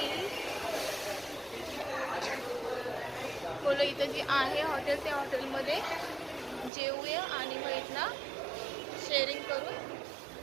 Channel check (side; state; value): left; drops out; at 6.7 s